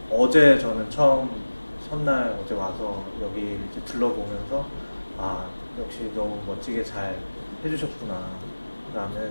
어제 저는 첫날 어제 와서 여기 이제 둘러보면서 역시 너무 멋지게 잘 해주셨구나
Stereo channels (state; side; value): inverted; both; correlation -1.00